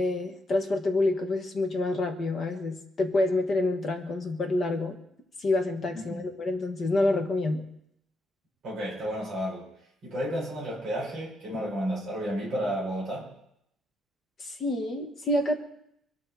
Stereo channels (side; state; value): both; normal; correlation 0.80